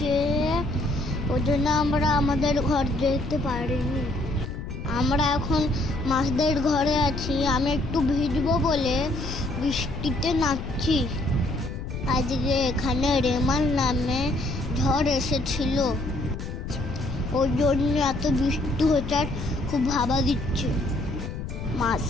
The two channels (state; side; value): noise; left; rumble, 7 dB below the sound